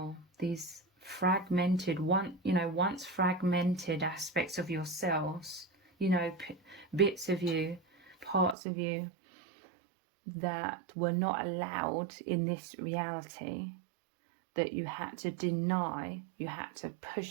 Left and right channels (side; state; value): left; drops out; at 8.6 s